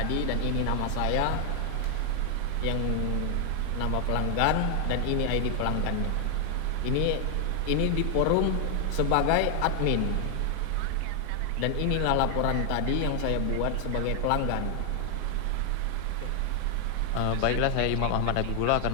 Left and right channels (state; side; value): different; both; correlation 0.00